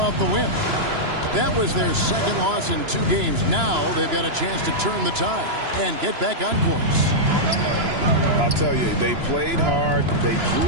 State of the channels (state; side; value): late; left; 2.9 ms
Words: the win. That was their second loss in 2 games. Now they've got a chance to turn the tide and get back on course. I'll tell you, they played hard, they drew